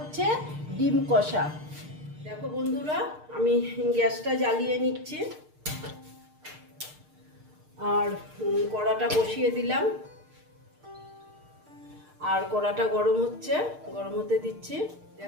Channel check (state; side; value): late; left; 6.6 ms